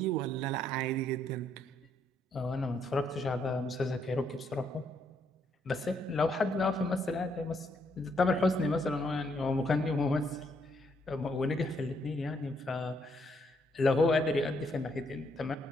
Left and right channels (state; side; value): normal; both; correlation 0.73